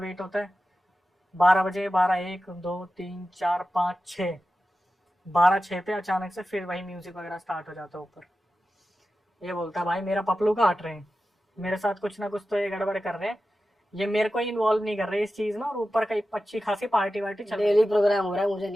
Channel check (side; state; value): both; normal; correlation 0.93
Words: होता है, 12 बजे, 12, 1, 2, 3, 4, 5, 6, 12-6 पे अचानक से फिर वही म्यूजिक वगैरह स्टार्ट हो जाता है ऊपर। ये बोलता है भाई मेरा पपलू काट रहे हैं, मेरे साथ कुछ ना कुछ तो ये गड़बड़ कर रहे हैं, ये मेरे को इन्वॉल्व नहीं कर रहे इस चीज में, और ऊपर कई अच्छी खासी पार्टी वार्टी चल रही है। डेली प्रोग्राम हो रहा है, मुझे